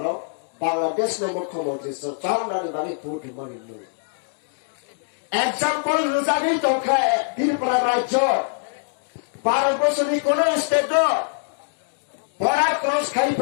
Bangladesh no mukhomantri so chaunani bani vote mani no example rujani tokha Tripura rajyo 12 বছরের কোন স্টেট বড়া ক্রস খাই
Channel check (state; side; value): silent; right; digital silence